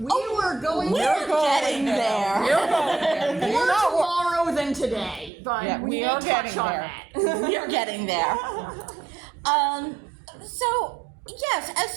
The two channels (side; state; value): left; drops out; at 5.3 s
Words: getting there. We're going there. More tomorrow than today, but Yeah, we we may are touch getting on there. that. We're getting there. So yes, as